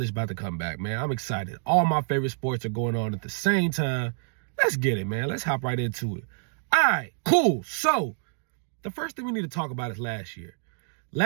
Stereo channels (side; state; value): left; silent; digital silence